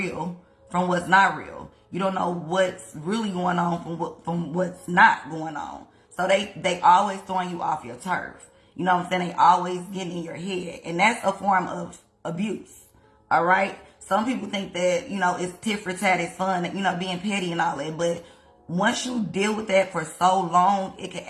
from what's not real. You don't know what's really going on from what's not going on. So they always throwing you off your turf. You know what I'm saying? They always getting in your head. And that's a form of abuse. All right? Some people think that, it's tit for tat, it's fun, being petty and all that. But once you deal with that for so long, it can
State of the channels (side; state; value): both; identical; correlation 1.00